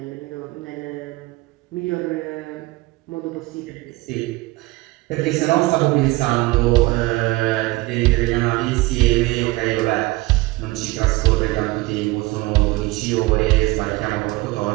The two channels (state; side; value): quieter; left; 21.1 dB